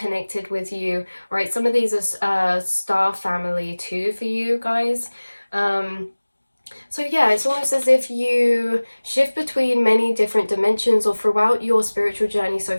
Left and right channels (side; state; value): both; inverted; correlation -1.00